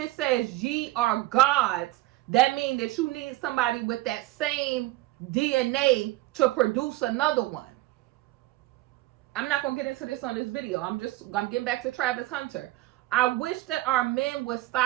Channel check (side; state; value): left; quieter; 17.6 dB